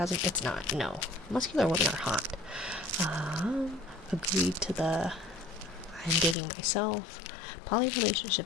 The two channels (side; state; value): right; drops out; at 6.4 s